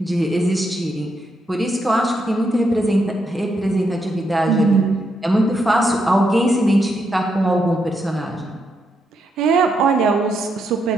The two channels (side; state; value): both; normal; correlation 0.80